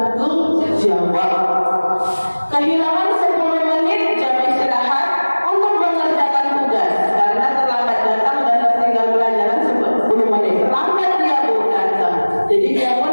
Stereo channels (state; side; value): inverted; both; correlation -1.00